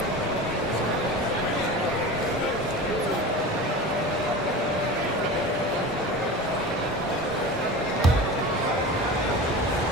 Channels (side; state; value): both; normal; correlation 0.32